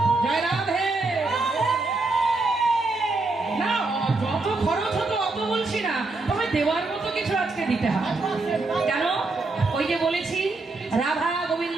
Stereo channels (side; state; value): left; quieter; 3.4 dB